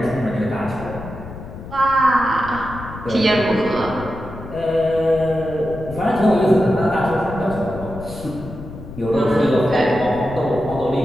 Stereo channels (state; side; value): noise; left; rumble, 13 dB below the sound